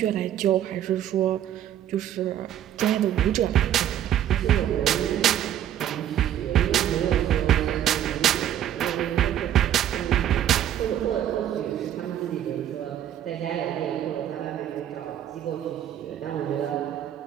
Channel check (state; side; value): quieter; left; 11.0 dB